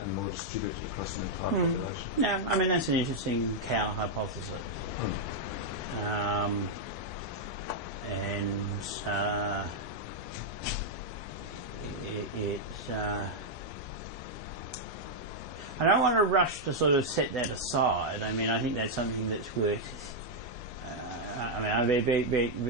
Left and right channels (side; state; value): both; normal; correlation -0.02